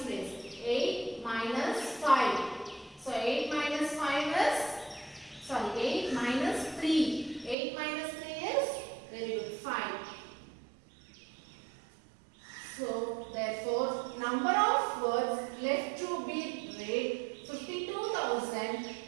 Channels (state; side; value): drops out; left; at 7.6 s